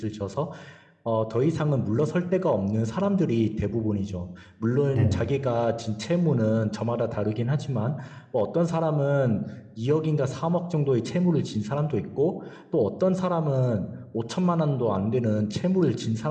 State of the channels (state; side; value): identical; both; correlation 1.00